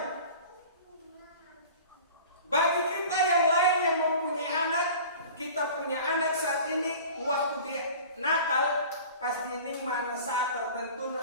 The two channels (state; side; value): inverted; both; correlation -0.42